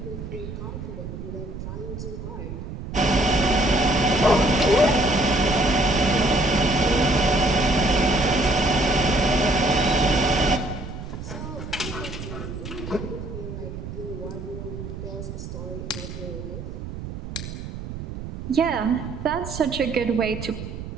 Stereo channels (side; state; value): right; noise; rumble, 9 dB below the sound